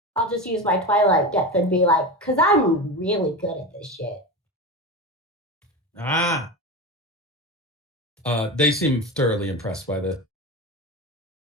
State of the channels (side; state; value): both; normal; correlation 0.23